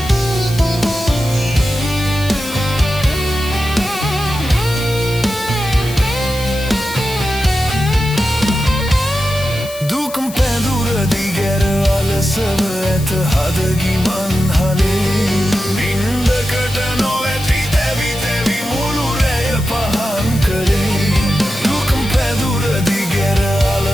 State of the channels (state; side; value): noise; left; hiss, 15 dB below the sound